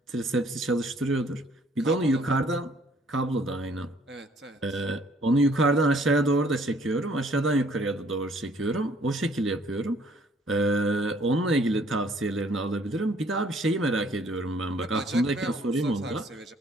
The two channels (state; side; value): normal; both; correlation 0.61